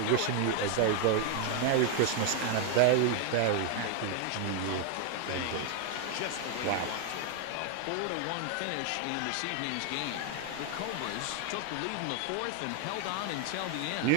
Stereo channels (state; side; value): different; both; correlation 0.00